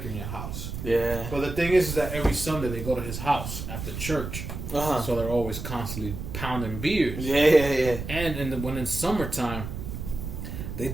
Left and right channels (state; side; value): noise; right; rumble, 7 dB below the sound